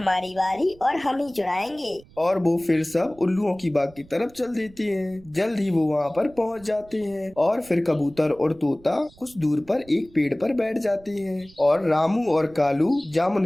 बारी और हम ही चुराएंगे। और वो फिर सब उल्लुओं की बाग की तरफ चल देते हैं। जल्द ही वो वहाँ पर पहुँच जाते हैं और फिर कबूतर और तोता कुछ दूर पर एक पेड़ पर बैठ जाते हैं और रामू और कालू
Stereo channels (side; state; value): right; noise; rumble, 24 dB below the sound